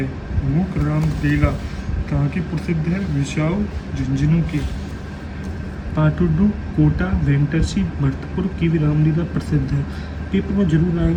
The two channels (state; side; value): identical; both; correlation 1.00